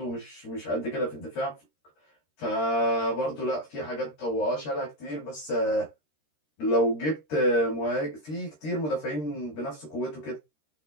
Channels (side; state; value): right; late; 13 ms